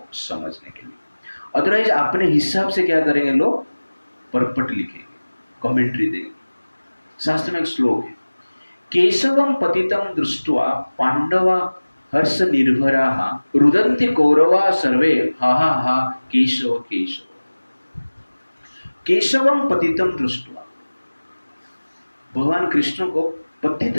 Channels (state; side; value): inverted; both; correlation -1.00